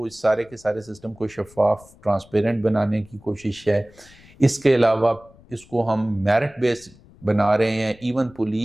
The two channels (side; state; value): left; noise; rumble, 25 dB below the sound